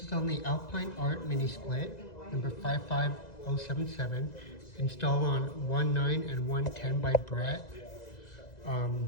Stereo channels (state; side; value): late; right; 2.0 ms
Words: is on the Alpine Art mini split, number 55077, installed on 19 and 110 by Brett.